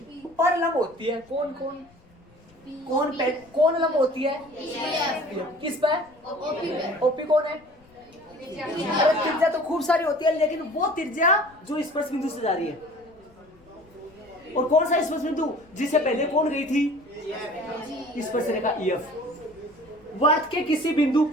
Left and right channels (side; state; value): left; noise; rumble, 29 dB below the sound